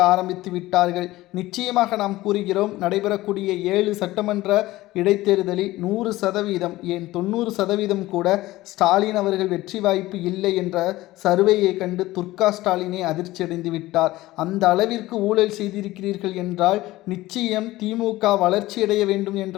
ஆரம்பித்து விட்டார்கள். நிச்சயமாக நாம் கூறுகிறோம், நடைபெறக்கூடிய 7 சட்டமன்ற இடைத்தேர்தலில் 100% ஏன் 90% கூட ஸ்டாலின் அவர்கள் வெற்றி வாய்ப்பு இல்லை என்ற சர்வேயை கண்டு துர்கா ஸ்டாலினை அதிர்ச்சியடைந்து விட்டார். அந்த அளவிற்கு ஊழல் செய்திருக்கிறீர்கள் என்றால் நிச்சயம் திமுக வளர்ச்சியடைய வேண்டும் என்ற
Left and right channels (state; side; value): quieter; right; 17.5 dB